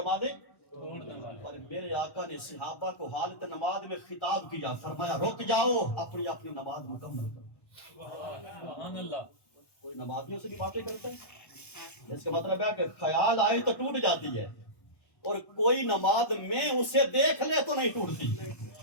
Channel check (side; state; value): right; late; 1.1 ms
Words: توڑنے والے، اور میرے آقا نے صحابہ کو حالت نماز میں خطاب کیا، فرمایا رک جاؤ، اپنی اپنی نماز مکمل کرو۔ سبحان اللہ، کوئی نمازیوں سے بھی باتیں کرتا ہے، اس کا مطلب ہے کہ خیال آئے تو ٹوٹ جاتی ہے، اور کوئی نماز میں اسے دیکھ لے تو نہیں ٹوٹتی۔